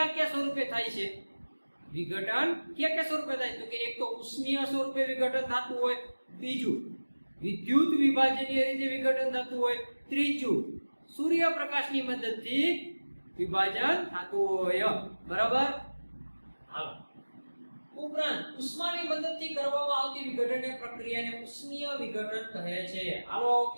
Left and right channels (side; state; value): both; inverted; correlation -1.00